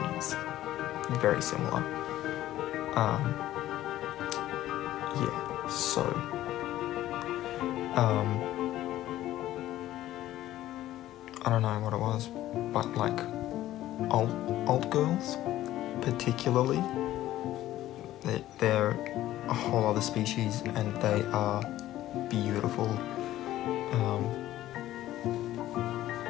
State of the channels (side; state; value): right; quieter; 14.2 dB